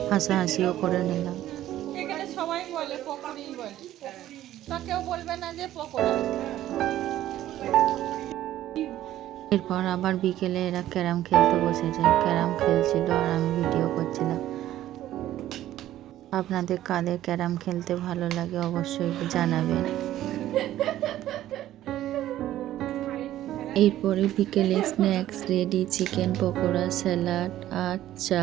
হাসাহাসিও করে নিলাম। এখানে সবাই বলে পকোড়ি বলে, তো কেউ বলবে না যে পকোড়া। এরপর আবার বিকেলে এরা ক্যারাম খেলতে বসেছে। ক্যারাম খেলছিল আর আমি ভিডিও করছিলাম। আপনাদের কাদের ক্যারাম খেলতে ভালো লাগে অবশ্যই জানাবেন। এরপরে বিকেলে snacks ready, chicken pakora, salad আর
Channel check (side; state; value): left; quieter; 13.4 dB